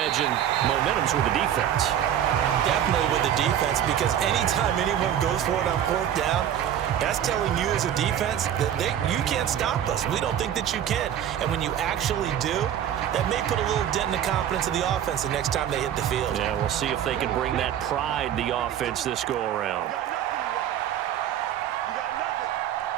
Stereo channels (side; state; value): left; quieter; 10.3 dB